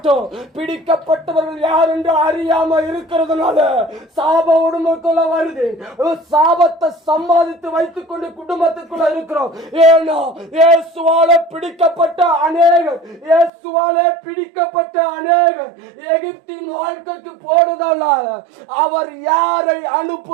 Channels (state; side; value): drops out; left; at 13.5 s